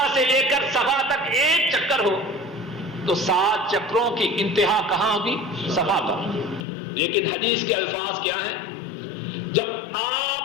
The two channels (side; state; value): right; drops out; at 6.7 s